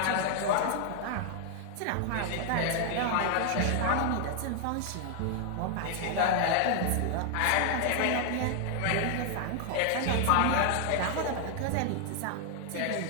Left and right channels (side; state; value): both; different; correlation 0.00